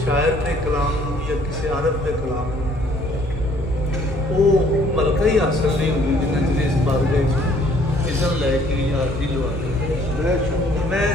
शायर के कलाम या किसी अरब के कलाम वो मलका ही हासिल नहीं होगी जिन्हें चिर इस बारगाह इज़्ज़त लैके हाज़री लवा के मैं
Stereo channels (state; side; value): normal; both; correlation 0.60